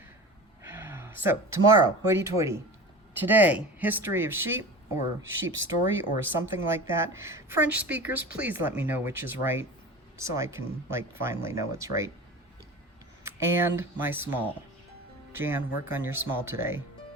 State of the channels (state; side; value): normal; both; correlation 0.34